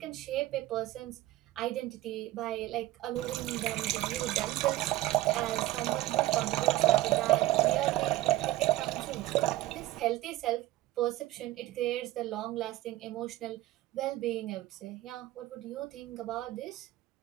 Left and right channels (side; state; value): left; quieter; 15.8 dB